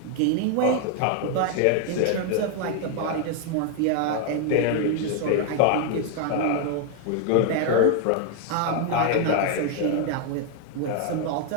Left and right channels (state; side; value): different; both; correlation 0.00